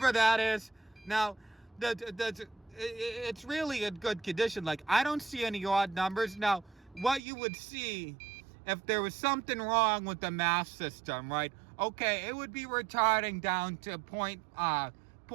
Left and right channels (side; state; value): left; drops out; at 7.2 s